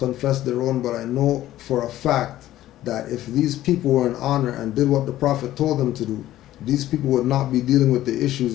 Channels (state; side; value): quieter; right; 14.1 dB